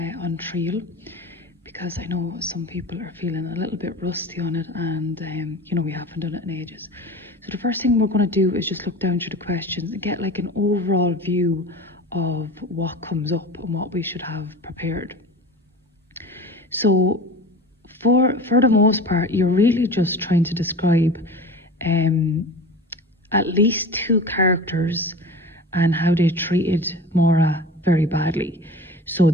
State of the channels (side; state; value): both; normal; correlation 0.35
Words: on triail, because I know some people are feeling a little bit rusty on it, and we haven't done it in ages. So the first thing we're going to do is just look down through the questions and get like an overall view of what comes up and what we should have prepared. So for the most part, you're really just trying to describe at least two characters and how they treated Maura very badly. So